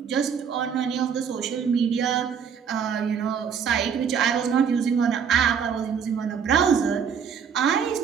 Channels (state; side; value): quieter; left; 7.1 dB